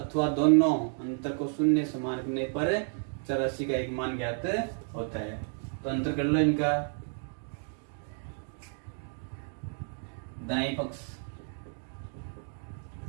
दोनों अंतर को शून्य समान रखने पर चरराशि का एक मान ज्ञात होता है। तो अंतर कर लो इनका, दाएं पक्ष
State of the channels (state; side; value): silent; left; 57 dB below the other